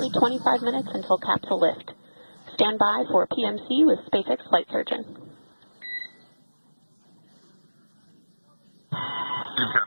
25 minutes until capsule lift. Stand by for PMC with SpaceX flight surgeon.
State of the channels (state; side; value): inverted; both; correlation -1.00